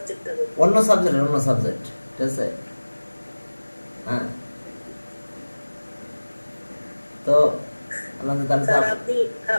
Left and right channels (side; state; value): both; inverted; correlation -1.00